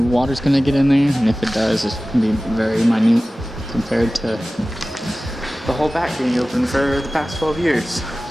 gonna get in there, and if it does, it's gonna be very minute compared to the whole back being open for the past 12 years.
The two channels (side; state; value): both; normal; correlation 0.97